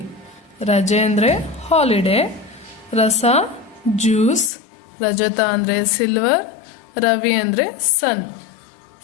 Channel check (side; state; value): right; drops out; at 4.5 s